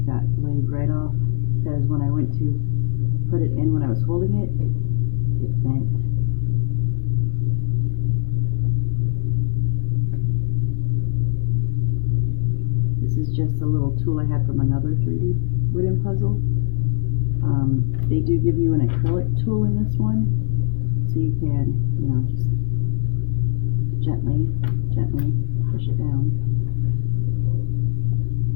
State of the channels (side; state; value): right; silent; digital silence